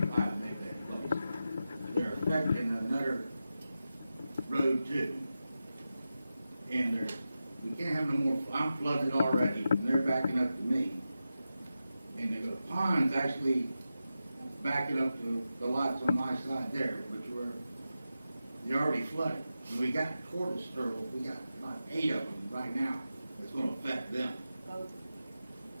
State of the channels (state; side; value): inverted; both; correlation -0.91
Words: Maybeck Place. They're affecting another road too. And we can't have no more, I'm flooded already, and they're backing up to me. And the pond's actually backing up to the lots on my side there, they're already flooded. And we got tortoise turtles, we got about 8 of them right now. That's gonna affect them.